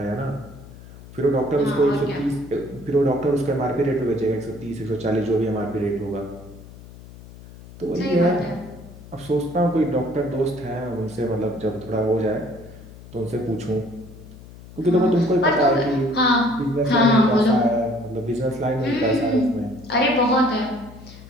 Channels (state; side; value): noise; left; hum, 18 dB below the sound